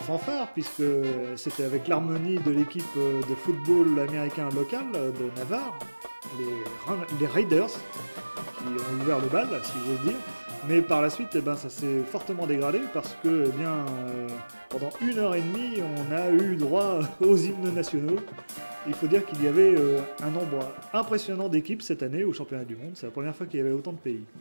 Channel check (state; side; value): inverted; both; correlation -1.00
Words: puisque c'était avec l'harmonie de l'équipe de football américain local de Navarre, les Raiders, qui ont ouvert le bal, si j'ose dire. Mais par la suite, ça s'est fortement dégradé parce que, pendant 1h30, on a eu droit aux hymnes nationaux. Il faut dire qu'il y avait un nombre impressionnant d'équipes cette année au championnat du monde. C'est la première fois qu'il y avait autant de pays.